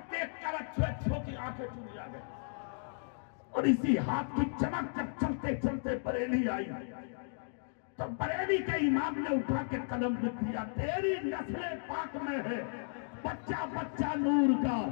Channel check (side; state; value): right; silent; digital silence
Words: देखकर अच्छों की आंखें चुनी आ गई। और इसी हाथ की चमक जब चलते चलते बरेली आई तो बरेली के इमाम ने उठा के कदम लिख दिया, तेरी नस्ले पाक में है बच्चा बच्चा नूर का,